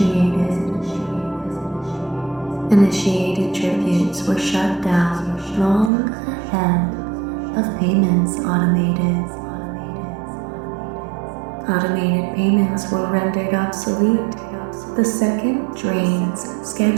Initiated tributes were shut down long ahead of payments automated. Automated payments were rendered obsolete the second drains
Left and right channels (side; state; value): left; drops out; at 5.9 s